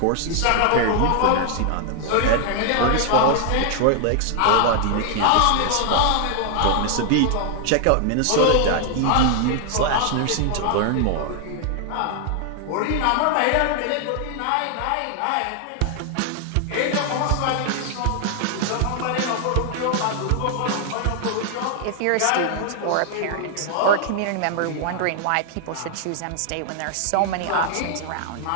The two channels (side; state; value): both; different; correlation 0.00